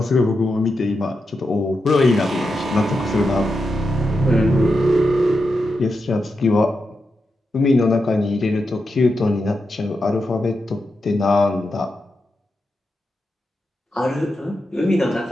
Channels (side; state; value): both; normal; correlation 0.87